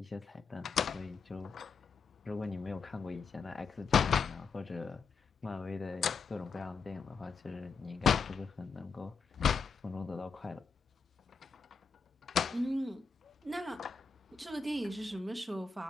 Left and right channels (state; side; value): quieter; right; 5.2 dB